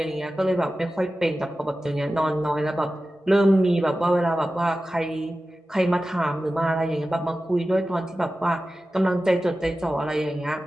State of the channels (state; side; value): normal; both; correlation 0.94